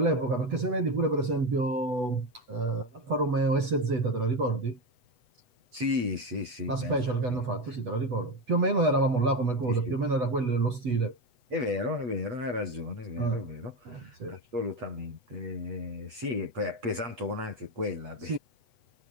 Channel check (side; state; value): left; late; 8.1 ms